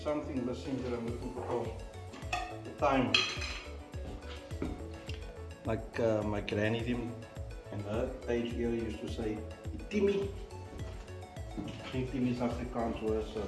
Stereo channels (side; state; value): both; identical; correlation 1.00